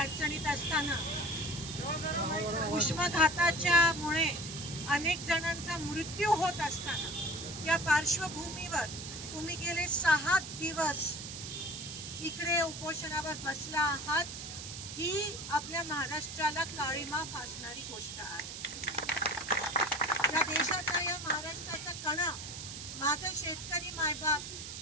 असताना उष्माघाताच्या मुळे अनेक जणांचा मृत्यू होत असताना या पार्श्वभूमीवर तुम्ही गेले 6 दिवस इकडे उपोषणावर बसला आहात, ही आपल्या महाराष्ट्राला काळीमा फासणारी गोष्ट आहे. या देशाचा, या महाराष्ट्राचा कणा, माझं शेतकरी मायबाप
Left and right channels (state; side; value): noise; right; hiss, 9 dB below the sound